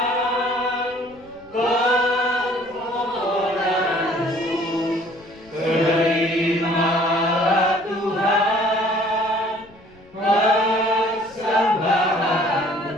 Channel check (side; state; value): left; noise; rumble, 27 dB below the sound